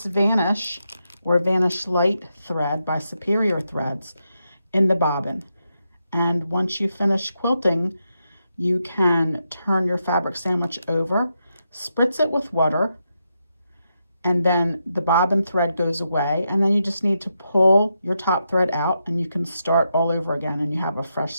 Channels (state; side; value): inverted; both; correlation -0.84